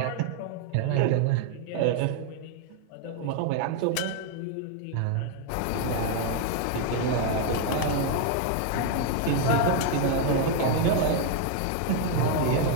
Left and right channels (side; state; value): both; different; correlation 0.00